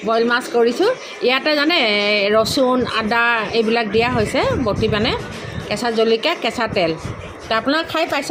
মাছ কৰিছোঁ। ইয়াতে জানে ৰচুন আদা এইবিলাক দিয়া হৈছে বটি মানে, কেঁচা জলকীয়া কেঁচা তেল। তো আপোনালোকে খাই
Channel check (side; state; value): both; identical; correlation 1.00